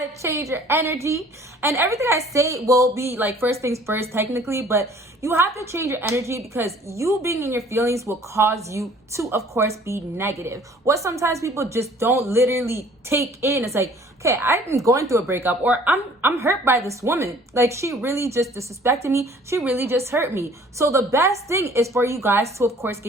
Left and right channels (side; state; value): both; normal; correlation 0.54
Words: change your energy. And everything I say will be like first things first technically, but you have to change your energy, because you being in your feelings will cause you to, of course, be negative. What sometimes people just don't literally take in, it's like, okay, I'm going through a breakup, or I'm hurt by this woman. Like, she really just disrespected me. She really just hurt me. So the best thing is for you guys to, of course,